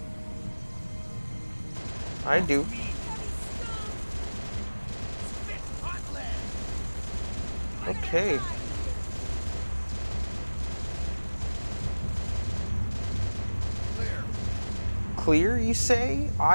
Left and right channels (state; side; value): inverted; both; correlation -1.00